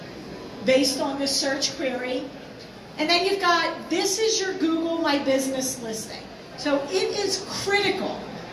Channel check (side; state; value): both; identical; correlation 1.00